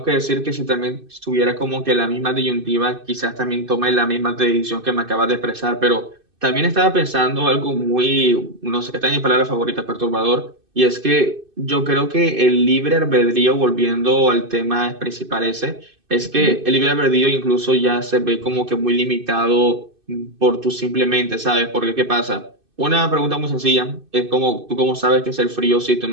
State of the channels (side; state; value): left; late; 2.6 ms